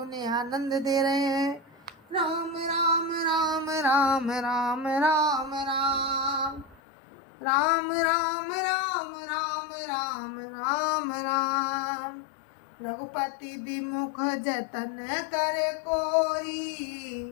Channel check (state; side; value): drops out; right; at 6.8 s